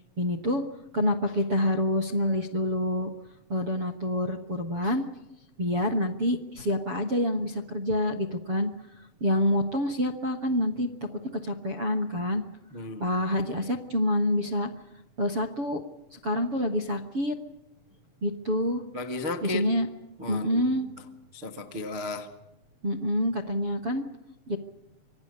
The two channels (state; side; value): late; left; 7.1 ms